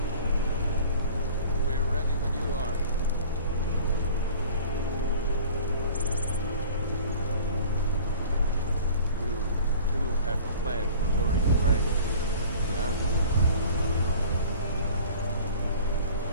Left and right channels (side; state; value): both; inverted; correlation -0.44